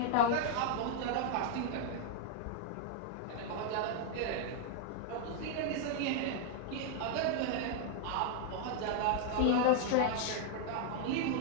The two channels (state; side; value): different; both; correlation -0.01